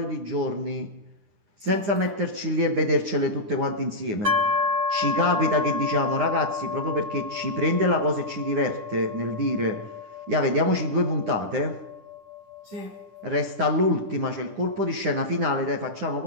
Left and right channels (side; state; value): left; late; 10 ms